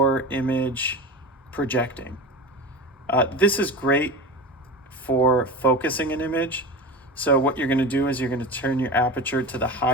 image projecting. This is great for focusing an image. So what you're going to do is you're going to turn your aperture to the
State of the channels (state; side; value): normal; both; correlation 0.29